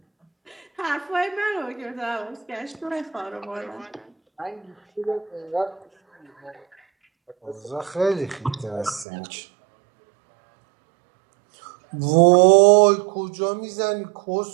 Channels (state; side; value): drops out; left; at 9.1 s